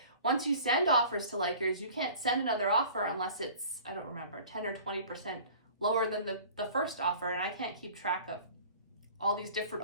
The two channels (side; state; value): both; inverted; correlation -0.45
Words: once you send offers to likers, you can't send another offer unless it's, I don't remember, 10 or 20% lower than the first offer. And I can't keep track of all these different